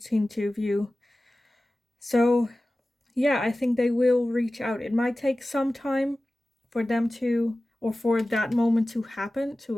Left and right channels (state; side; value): normal; both; correlation 0.96